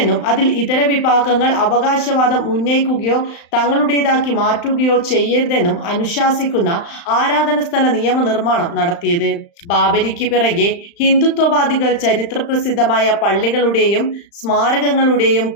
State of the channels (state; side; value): late; right; 35 ms